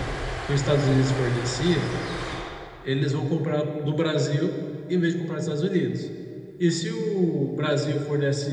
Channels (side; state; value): both; identical; correlation 1.00